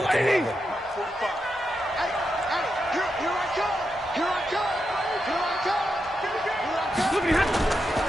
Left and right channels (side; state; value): both; normal; correlation 0.86